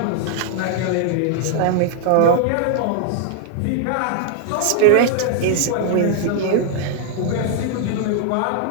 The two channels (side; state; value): both; different; correlation -0.01